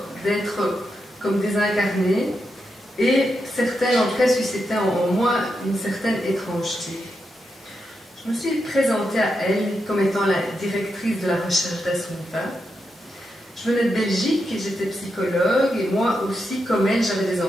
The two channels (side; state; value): both; normal; correlation 0.85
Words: d'être comme désincarnées. Et certaines, en tout cas, suscitaient en moi une certaine étrangeté. Je me suis présentée à elle comme étant la directrice de la recherche d'Assunta. Je venais de Belgique et j'étais psychologue, et moi aussi, comme elle, j'avais des